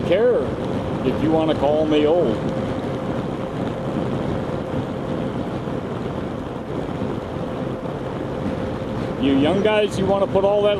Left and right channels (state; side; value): identical; both; correlation 1.00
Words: care if you want to call me old. You young guys, you want to put all that